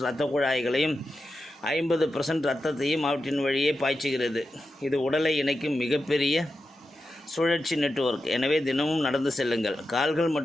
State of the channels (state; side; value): normal; both; correlation 0.90